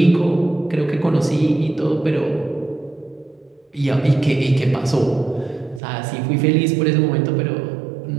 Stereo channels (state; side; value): drops out; left; at 5.8 s